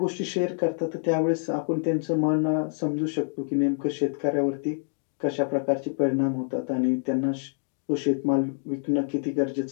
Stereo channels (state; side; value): silent; right; digital silence